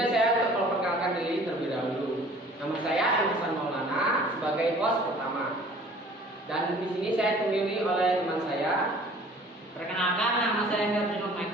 saya untuk memperkenalkan diri terlebih dahulu. Nama saya Hasan Maulana sebagai host pertama. Dan di sini saya ditemani oleh teman saya. Perkenalkan, nama saya Ferdinand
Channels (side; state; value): both; normal; correlation 0.50